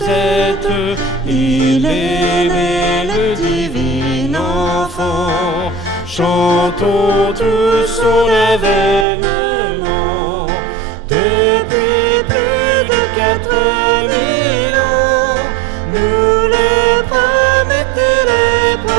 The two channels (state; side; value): drops out; left; at 9.1 s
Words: Il est né le divin enfant, chantons tous son avènement. Depuis plus de 4000 ans, nous le promettaient les